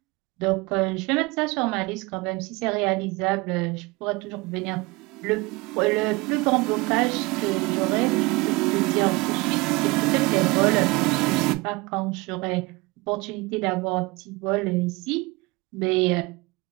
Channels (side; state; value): left; quieter; 24.1 dB